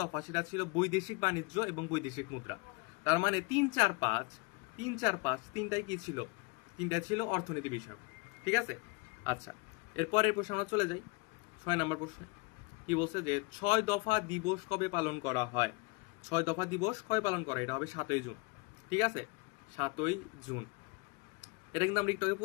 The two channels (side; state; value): right; quieter; 25.9 dB